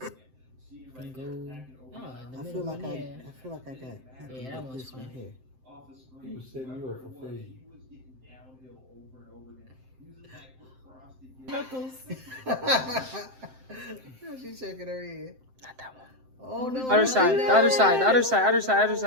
And go. Oh, in the I middle feel like one, I yeah. feel like I got. Yeah, that one's this one fine. here. He was setting you up for fade. Knuckles. She's shaking her head. Not that one. Oh no. Other side. The other side. The other side. Other side. Other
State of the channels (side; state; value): left; late; 7.7 ms